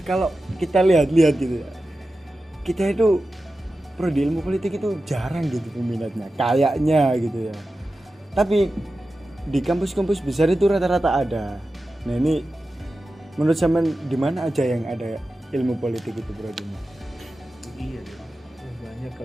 kalau kita lihat gitu ya. Kita itu prodi ilmu politik itu jarang gitu peminatnya. Kayaknya gitu ya. Tapi di kampus-kampus besar itu rata-rata ada. Nah, ini menurut zaman di mana aja yang ada ilmu politik itu prodinya? Iya deh. Banyak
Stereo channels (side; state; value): both; normal; correlation 0.93